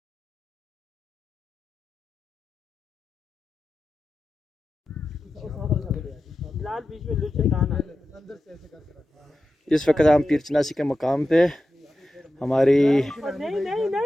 लाल बीच में लुच दाना अंदर से ऐसे करके रखा। इस वक्त हम पीरचनासी के मकाम पे हमारी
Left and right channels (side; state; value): both; normal; correlation 0.92